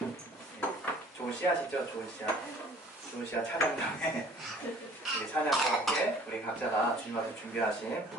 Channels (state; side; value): normal; both; correlation 0.53